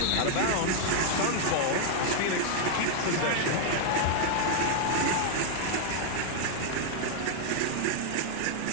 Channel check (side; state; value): both; different; correlation 0.00